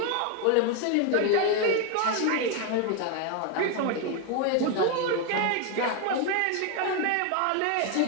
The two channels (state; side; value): different; both; correlation 0.01